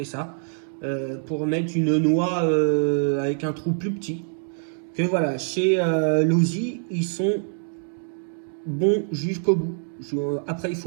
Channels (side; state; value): left; silent; 62 dB below the other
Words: ça, pour mettre une noix avec un trou plus petit. Que voilà, chez Losi, ils sont bons jusqu'au bout. Après, il